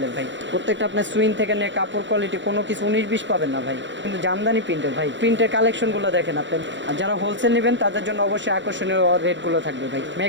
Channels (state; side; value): late; left; 0.54 ms